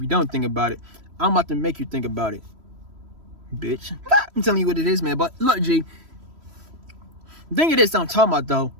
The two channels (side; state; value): left; late; 3.1 ms